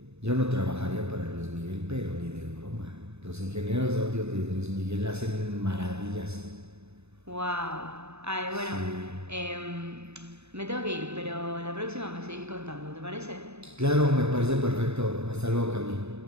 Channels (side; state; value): left; late; 0.80 ms